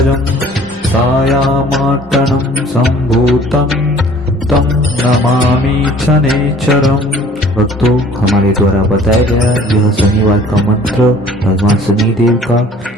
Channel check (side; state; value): both; normal; correlation 0.52